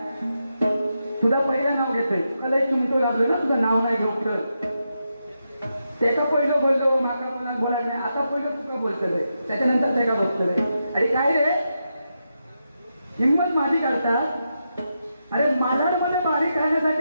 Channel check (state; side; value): inverted; both; correlation -0.86